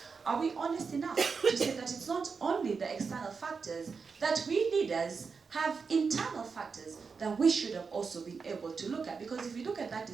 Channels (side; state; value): left; quieter; 5.2 dB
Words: Are we honest enough to say that it's not only the external factors, that we leaders have internal factors that we should have also been able to look at? Because if you look at that